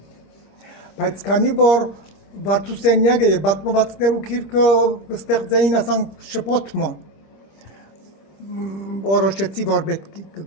բայց քանի որ Վարդուսենյակը եւ պատմվածքներու քիրքը կստեղծեին ասանք շփոթմը որոշեցի որ պետք է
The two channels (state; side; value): late; right; 25 ms